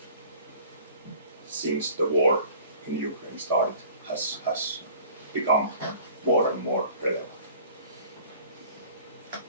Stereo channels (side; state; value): both; inverted; correlation -0.48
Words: since the war in Ukraine started has become more and more relevant.